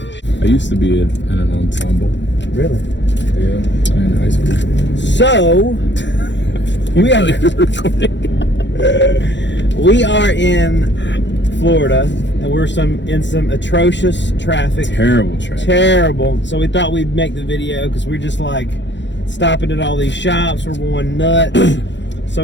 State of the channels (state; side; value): late; right; 0.52 ms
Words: I used to be in an ensemble. Really? Yeah, in high school. So we are in Florida, and we're in some atrocious traffic. Terrible traffic. Terrible. So we thought we'd make the video because we're just like stopping at all these shops. We're going nuts.